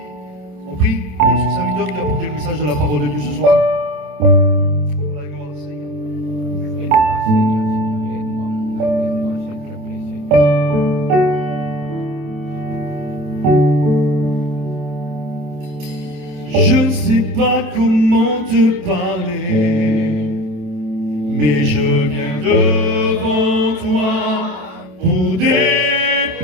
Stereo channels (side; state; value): left; late; 28 ms